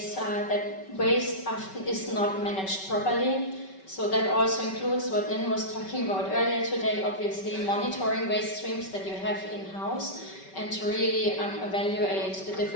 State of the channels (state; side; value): late; right; 5.2 ms